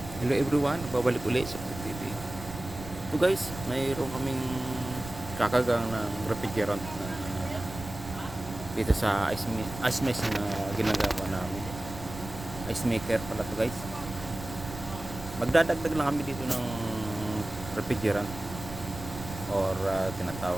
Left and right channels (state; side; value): noise; right; rumble, 12 dB below the sound